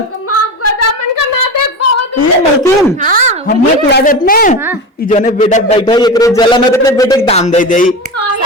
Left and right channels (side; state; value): both; normal; correlation 0.25